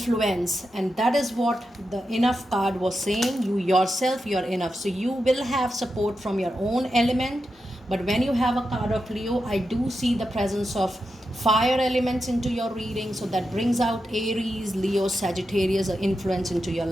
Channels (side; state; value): both; normal; correlation 0.88